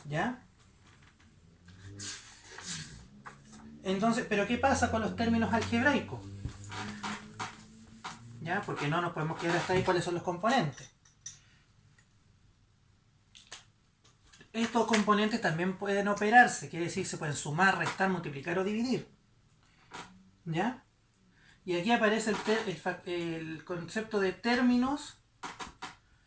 ¿Ya? Entonces, ¿pero qué pasa con los términos algebraicos? ¿Ya? Porque no nos podemos quedar hasta ahí cuáles son los componentes. Estos componentes también pueden operarse, quiere decir, se pueden sumar, restar, multiplicar o dividir. ¿Ya? Y aquí aparece el concepto de términos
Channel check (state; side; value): identical; both; correlation 1.00